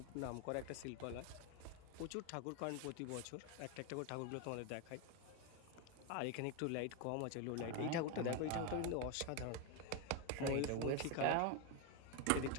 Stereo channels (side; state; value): both; different; correlation 0.01